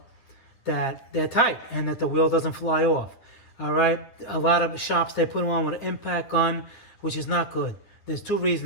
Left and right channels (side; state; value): right; late; 10 ms